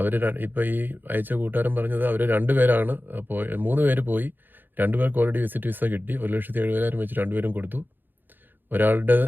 ഇപ്പോൾ ഈ അയച്ച കൂട്ടുകാരൻ പറഞ്ഞത് അവർ 2 പേരാണ് 3 പേര് പോയി, 2 പേർക്ക് ഓൾറെഡി വിസിറ്റ് വിസ കിട്ടി. 1,70,000 വെച്ച് 2 പേരും കൊടുത്തു. ഒരാളുടെ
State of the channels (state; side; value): late; left; 0.092 ms